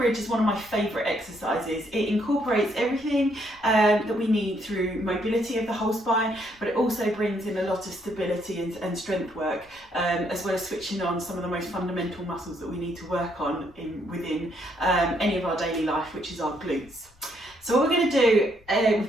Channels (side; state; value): left; noise; rumble, 29 dB below the sound